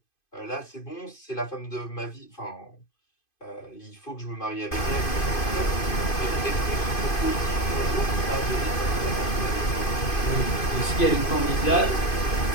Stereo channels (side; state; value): right; late; 2.5 ms